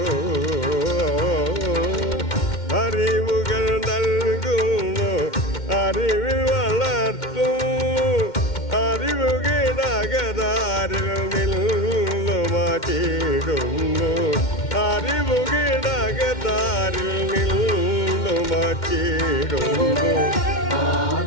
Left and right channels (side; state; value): right; late; 2.1 ms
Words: അറിവുകൾ നൽകുന്നു അറിവിൽ വളർത്തുന്നു അറിവ് കിടകതാരിൽ നിന്നു മാറ്റിയിടുന്നു അറിവ് കിടകതാരിൽ നിന്നു മാറ്റിയിടുന്നു